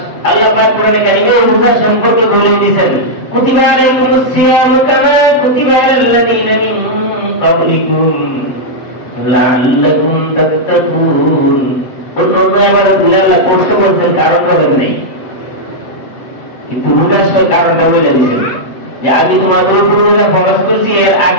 আল্লাহ পাক কোরআনে কারিমে রোজা সম্পর্কে বলে দিয়েছেন কুতিবা আলাইকুমুস সিয়ামু কামা কুতিবা আলাল্লাযীনা মিন ক্বাবলিকুম লাআল্লাকুম তাত্তাকুন। অন্য আবার আল্লাহ কষ্ট করছেন, কারণ বলেন নাই, কিন্তু রোজার কারণটা বলে দিয়েছেন যে আমি তোমাদের উপর রোজা ফরজ করছি, এর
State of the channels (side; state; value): right; late; 8.1 ms